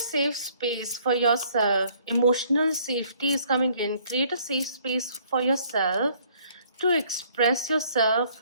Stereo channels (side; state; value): both; inverted; correlation -0.61